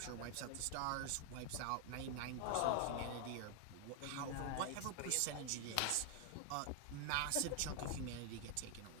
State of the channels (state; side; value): different; both; correlation 0.00